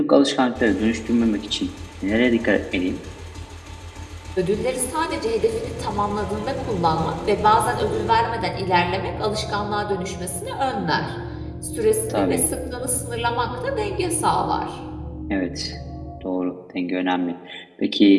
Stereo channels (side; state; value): both; identical; correlation 1.00